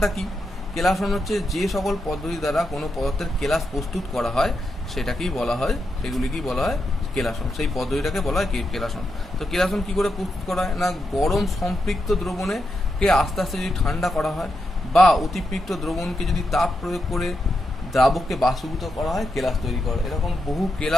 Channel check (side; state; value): both; normal; correlation 0.85